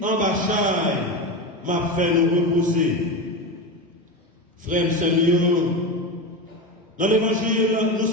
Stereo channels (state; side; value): normal; both; correlation 0.20